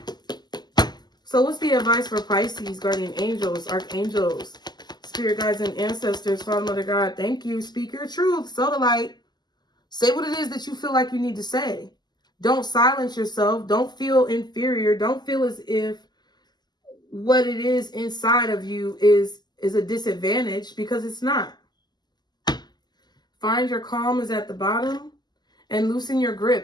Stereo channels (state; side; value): late; right; 0.21 ms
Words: So what's the advice for Pisces, guardian angels, archangels, spirit guides, and ancestors? Father, Mother, God, thank you. Speak your truth. Sow the light. Say what it is that you feel like you need to say. Don't silence yourself. Don't feel inferior. Don't feel as if what it is inside of you is a disadvantage, because it's not. Find your calm is at the bottom, and loosen your